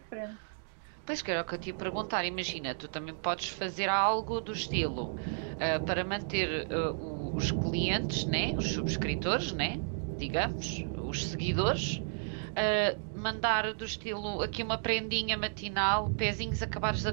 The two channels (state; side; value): silent; left; digital silence